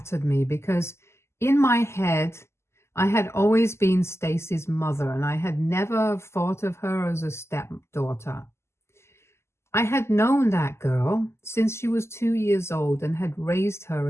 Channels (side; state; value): right; late; 0.13 ms